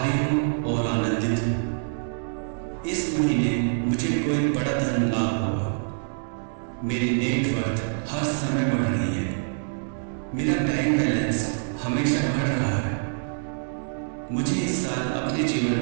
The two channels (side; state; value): left; silent; 61 dB below the other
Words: हूँ और आनंदित हूँ। इस महीने मुझे कोई बड़ा धन लाभ होगा। मेरी नेटवर्थ हर समय बढ़ रही है। मेरा बैंक बैलेंस हमेशा बढ़ रहा है। मुझे इस साल अपने